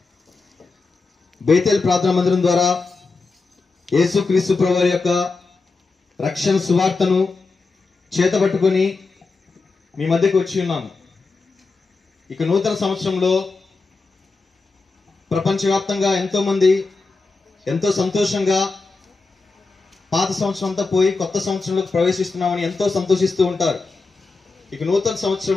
బేతేల్ ప్రార్థనా మందిరం ద్వారా యేసుక్రీస్తు ప్రభువారి యొక్క రక్షణ సువార్తను చేతబట్టుకొని మీ మధ్యకు వచ్చి ఉన్నాము. ఇక నూతన సంవత్సరంలో ప్రపంచవ్యాప్తంగా ఎంతో మంది ఎంతో సంతోషంగా పాత సంవత్సరం అంతా పోయి కొత్త సంవత్సరంలోకి ప్రవేశిస్తున్నామని ఎంతో సంతోషిస్తూ ఉంటారు. ఇక నూతన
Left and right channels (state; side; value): quieter; right; 4.0 dB